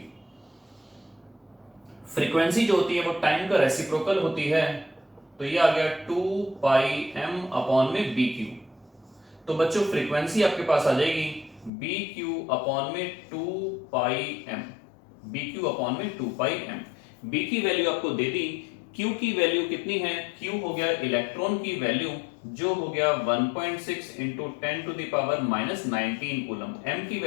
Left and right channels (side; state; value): right; drops out; at 11.7 s